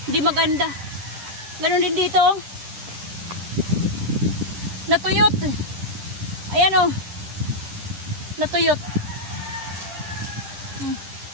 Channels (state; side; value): late; left; 10 ms